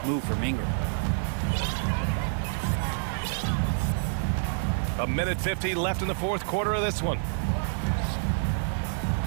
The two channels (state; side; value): silent; left; 56 dB below the other